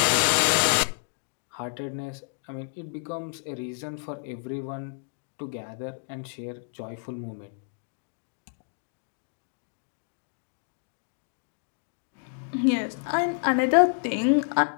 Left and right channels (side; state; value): right; silent; 59 dB below the other